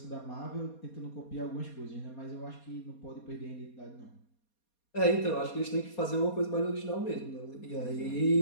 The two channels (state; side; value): late; right; 4.2 ms